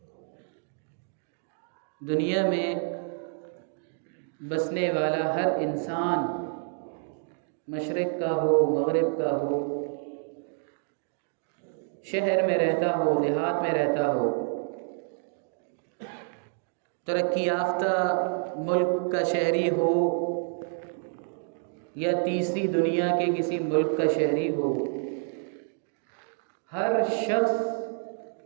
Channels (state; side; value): silent; left; 59 dB below the other